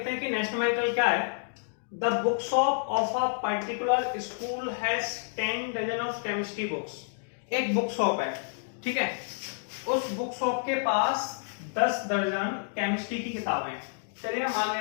हैं कि नेक्स्ट न्यूमेरिकल क्या है। The book shop of a particular school has 10 dozen of chemistry books. एक बुक शॉप है, ठीक है, उस बुक शॉप के पास 10 दर्जन केमिस्ट्री की किताबें। चलिए मान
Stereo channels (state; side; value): silent; right; digital silence